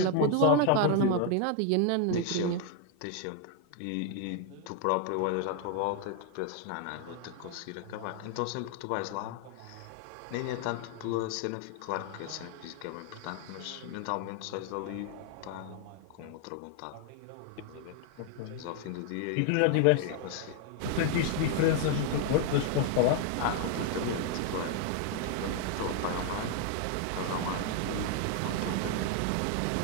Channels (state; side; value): different; both; correlation 0.00